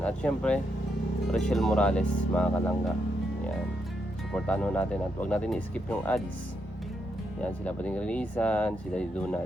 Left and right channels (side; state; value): both; normal; correlation 0.80